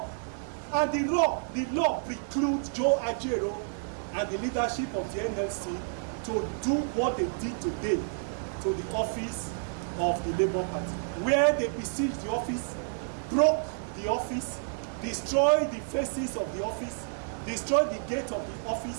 And the law precludes Joe Ajaero and the leadership of the NLC to do what they did today to the office of the Labour Party, where they besieged the office, broke the office, destroyed the faces of the office, destroyed the gate of the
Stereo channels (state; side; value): silent; left; digital silence